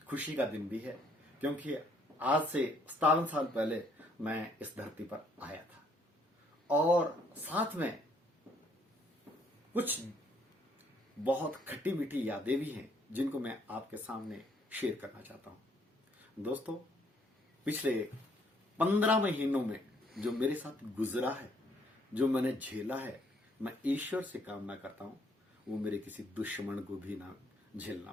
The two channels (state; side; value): normal; both; correlation 0.66